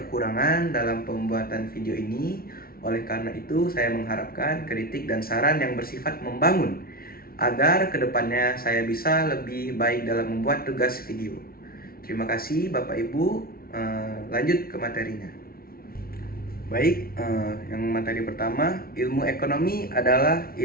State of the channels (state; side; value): late; right; 0.43 ms